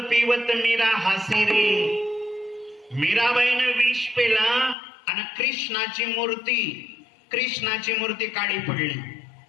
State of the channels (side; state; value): right; drops out; at 4.8 s